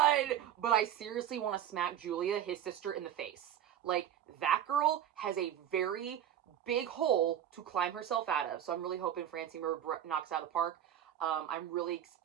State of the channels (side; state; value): left; quieter; 10.4 dB